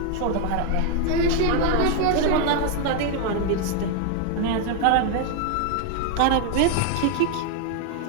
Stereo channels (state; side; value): different; both; correlation 0.01